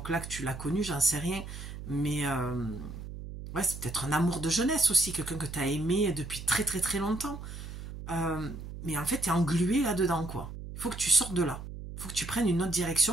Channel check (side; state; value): right; noise; hum, 10 dB below the sound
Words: que tu l'as connu, j'en sais rien. Mais ouais, c'est peut-être un amour de jeunesse aussi, quelqu'un que tu as aimé depuis très très très longtemps. Mais en fait, tu es englué là-dedans, quoi. Il faut que tu sortes de là. Il faut que tu prennes une autre